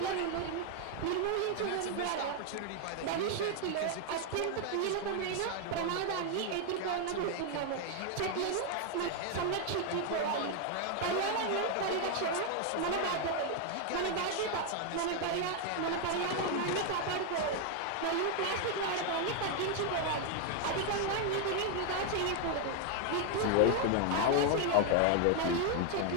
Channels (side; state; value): both; different; correlation 0.00